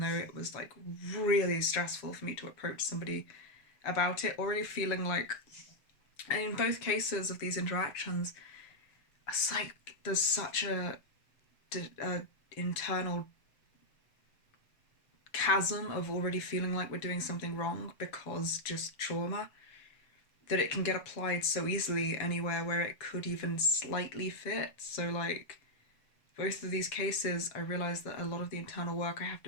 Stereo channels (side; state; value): right; late; 7.1 ms